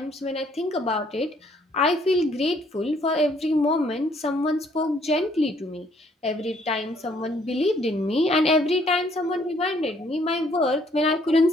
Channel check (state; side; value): normal; both; correlation 0.64